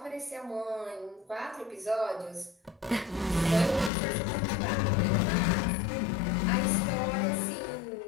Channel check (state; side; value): drops out; right; at 3.9 s